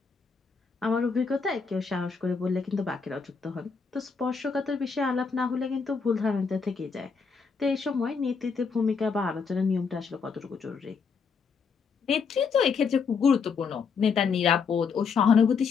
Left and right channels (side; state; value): right; quieter; 5.5 dB